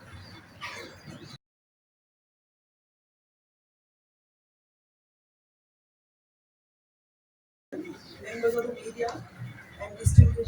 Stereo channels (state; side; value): identical; both; correlation 1.00